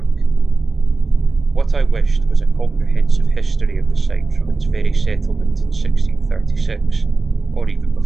What I wished was a comprehensive history of the site from its very settlement in 1636, or even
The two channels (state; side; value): quieter; left; 3.7 dB